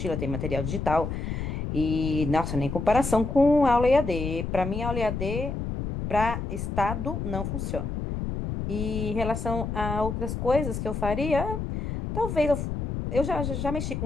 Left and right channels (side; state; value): left; noise; rumble, 4 dB below the sound